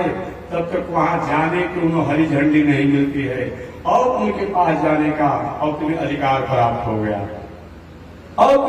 तब तक वहां जाने की उन्हें हरी झंडी नहीं मिलती है, और उनके पास जाने का और तुम्हें अधिकार प्राप्त हो गया, और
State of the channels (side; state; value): both; identical; correlation 1.00